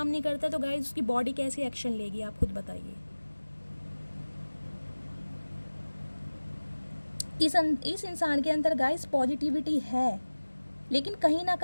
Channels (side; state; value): both; inverted; correlation -1.00